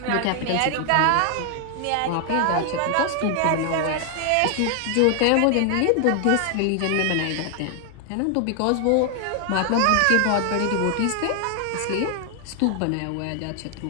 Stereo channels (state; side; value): different; both; correlation 0.00